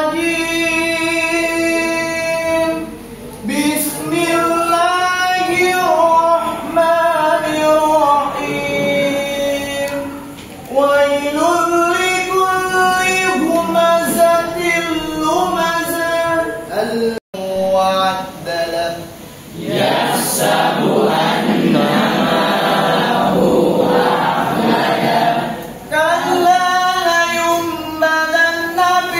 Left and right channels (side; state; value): both; identical; correlation 1.00